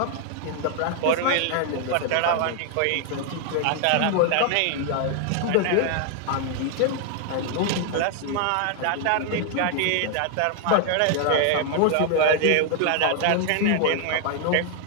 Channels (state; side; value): different; both; correlation 0.00